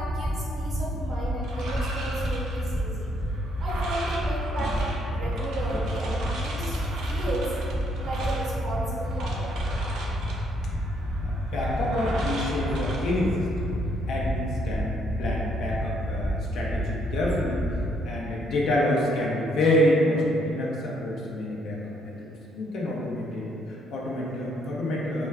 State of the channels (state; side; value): normal; both; correlation 0.71